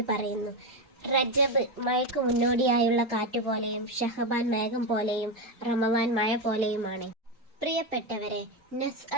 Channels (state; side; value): normal; both; correlation 0.11